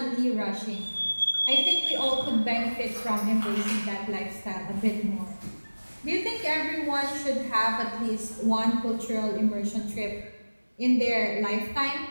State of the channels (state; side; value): inverted; both; correlation -1.00